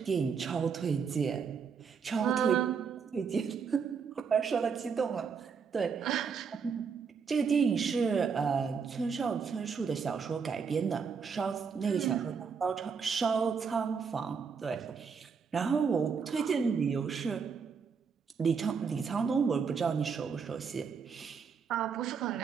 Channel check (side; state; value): left; quieter; 6.0 dB